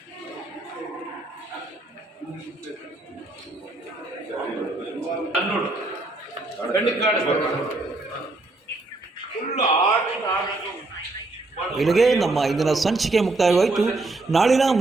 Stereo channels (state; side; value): quieter; left; 3.1 dB